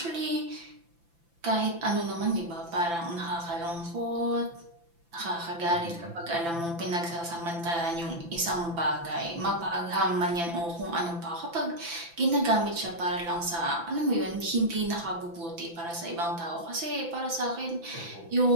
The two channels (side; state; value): left; late; 5.9 ms